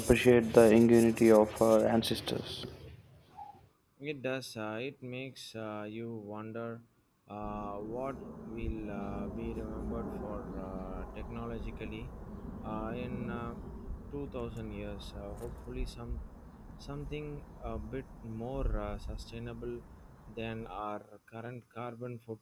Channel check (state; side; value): identical; both; correlation 1.00